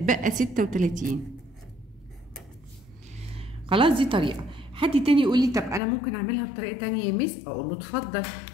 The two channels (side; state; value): right; drops out; at 5.8 s